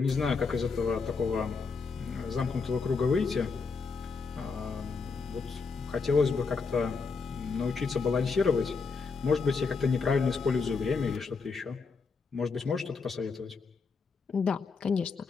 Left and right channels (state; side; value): quieter; right; 4.8 dB